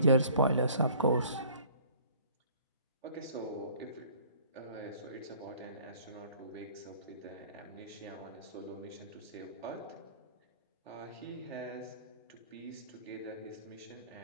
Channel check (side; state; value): both; inverted; correlation -0.52